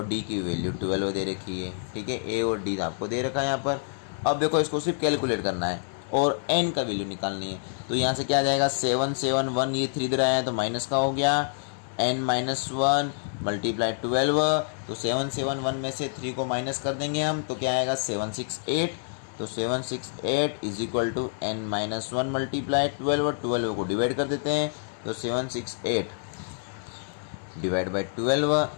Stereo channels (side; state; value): right; silent; digital silence